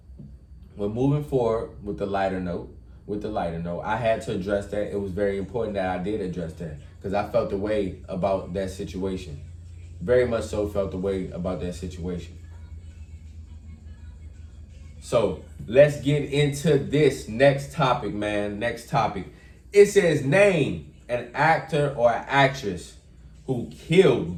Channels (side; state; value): both; identical; correlation 1.00